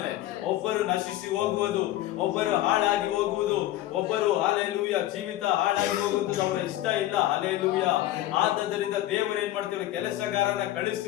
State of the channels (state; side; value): quieter; right; 14.6 dB